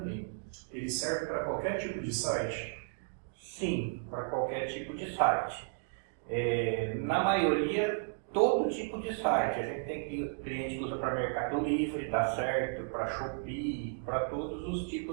Ele serve para qualquer tipo de site? Sim, para qualquer tipo de site. Na maioria, todo tipo de site. A gente tem cliente que usa para Mercado Livre, dá certo, para Shopee, para todos os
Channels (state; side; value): silent; left; digital silence